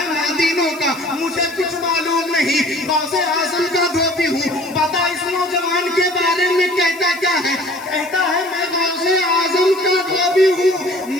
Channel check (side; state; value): left; noise; hiss, 20 dB below the sound